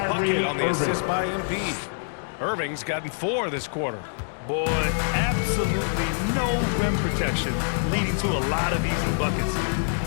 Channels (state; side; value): silent; right; digital silence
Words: on the assist by MP. Irving's gotten 4 this quarter. Boy, absolutely no rim protection, leading to a lot of easy buckets.